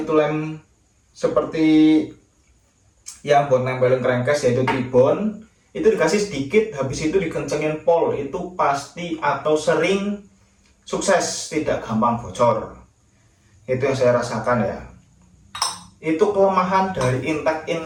lem seperti yang buat nempelin crankcase yaitu tribon, itu dikasih sedikit, habis itu dikencengin pol, itu pasti atau sering sukses, tidak gampang bocor. Itu yang saya rasakan ya. Itu kelemahan dari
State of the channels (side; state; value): both; identical; correlation 1.00